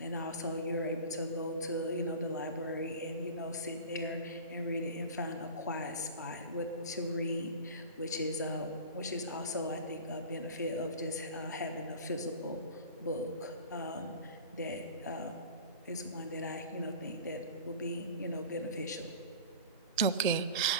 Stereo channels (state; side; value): inverted; both; correlation -0.36